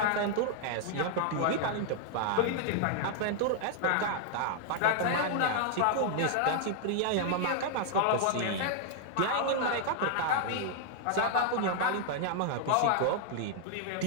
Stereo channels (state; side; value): different; both; correlation -0.01